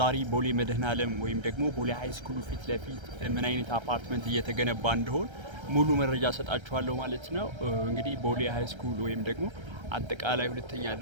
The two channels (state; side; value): late; left; 1.3 ms